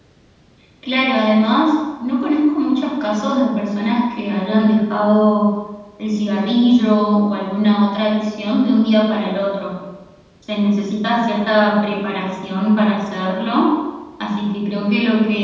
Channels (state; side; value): identical; both; correlation 1.00